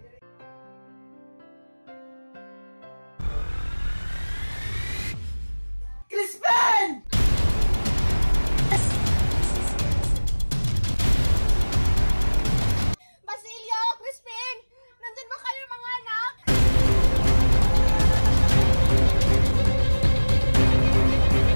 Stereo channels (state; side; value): inverted; both; correlation -1.00